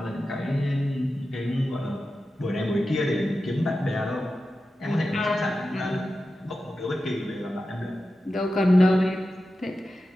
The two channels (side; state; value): both; normal; correlation 0.92